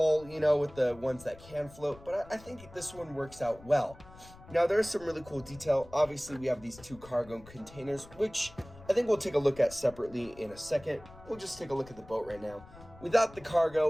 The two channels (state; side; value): noise; left; rumble, 20 dB below the sound